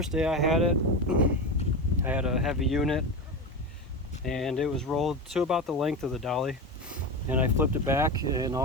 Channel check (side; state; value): both; normal; correlation 0.22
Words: day I had it, I had a heavy unit, and it was rolled to about the length of the Dolly. And I flipped it back, and